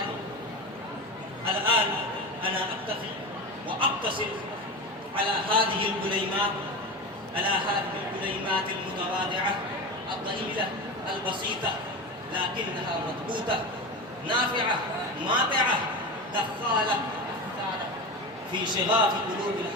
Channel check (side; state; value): both; normal; correlation 0.25